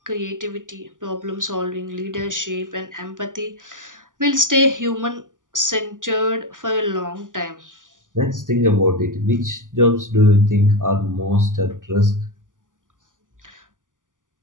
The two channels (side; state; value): left; late; 0.88 ms